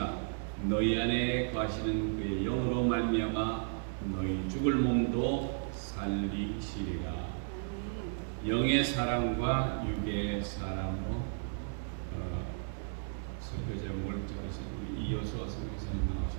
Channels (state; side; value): silent; left; digital silence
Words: 너희 안에 거하시는 그의 영으로 말미암아 너희 죽을 몸도 살리시리라. 영의 사람과 육의 사람으로 설교 제목을 적으신 우리 이효수아 선교사님